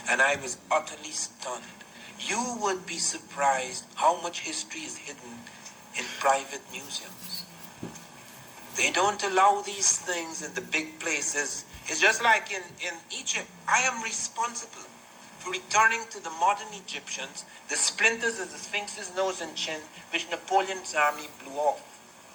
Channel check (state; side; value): identical; both; correlation 1.00